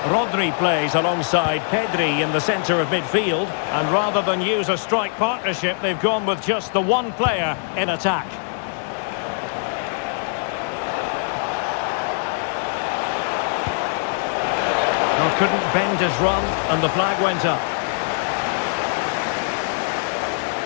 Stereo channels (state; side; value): silent; right; digital silence